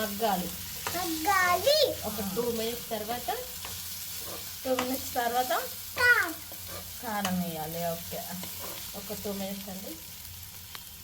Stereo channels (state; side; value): identical; both; correlation 1.00